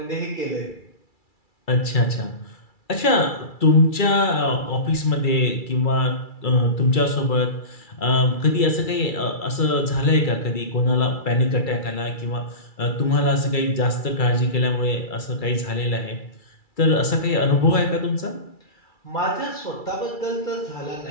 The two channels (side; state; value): right; late; 2.3 ms